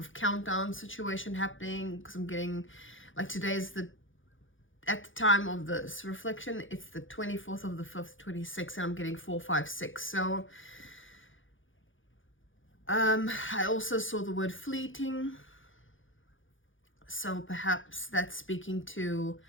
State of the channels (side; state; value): right; late; 0.57 ms